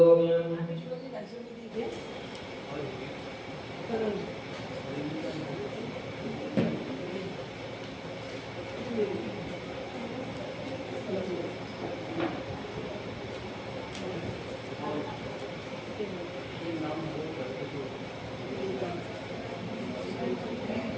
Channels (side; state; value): both; identical; correlation 1.00